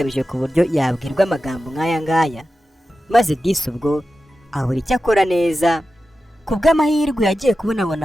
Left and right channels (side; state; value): both; normal; correlation 0.93